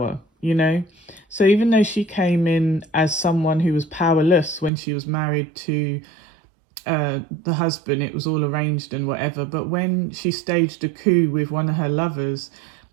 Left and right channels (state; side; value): drops out; left; at 4.7 s